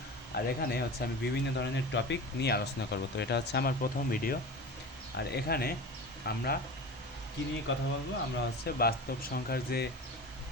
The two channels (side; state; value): both; normal; correlation 0.32